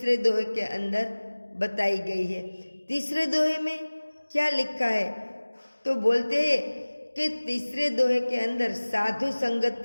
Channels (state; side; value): inverted; both; correlation -1.00